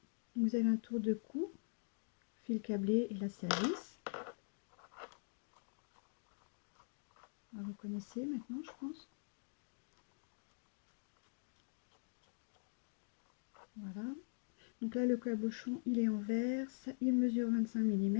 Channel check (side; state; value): right; silent; digital silence